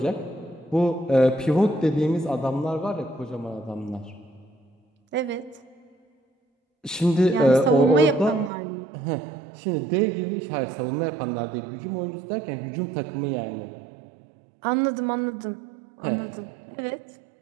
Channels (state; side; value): drops out; left; at 8.5 s